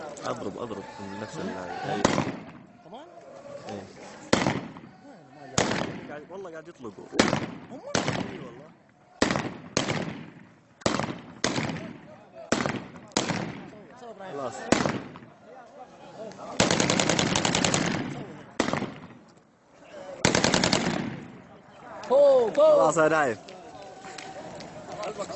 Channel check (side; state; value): both; identical; correlation 1.00